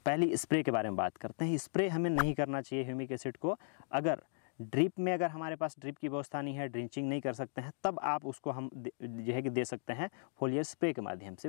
पहले स्प्रे के बारे में बात करते हैं। स्प्रे हमें नहीं करना चाहिए ह्यूमिक एसिड को। अगर ड्रिप में, अगर हमारे पास ड्रिप की व्यवस्था नहीं है, ड्रिंचिंग नहीं कर सकते हैं, तब आप उसको हम जो है कि दे सकते हैं फोलियर स्प्रे के माध्यम से।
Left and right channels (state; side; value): silent; right; digital silence